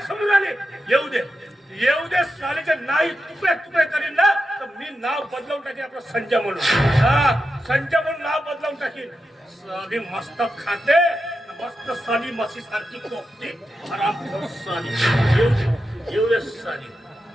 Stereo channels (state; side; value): normal; both; correlation 0.89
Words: समजून आली. येऊ दे सालीचे नाही तुकडे करीन ना तर मी नाव बदलवून टाकेन. आपलं संजय म्हणून. संजय म्हणून नाव बदलवून टाकेन. साली मस्त खाते, मस्त साली मसी सारखी कोपते. हरामखोर साली. येऊ दे साली.